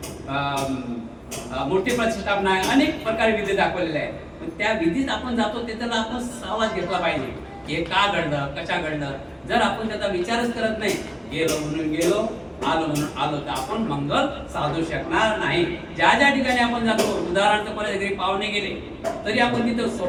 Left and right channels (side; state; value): both; identical; correlation 1.00